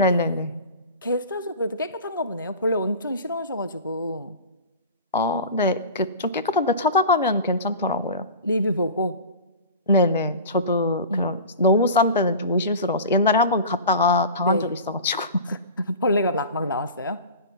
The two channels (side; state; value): both; inverted; correlation -0.34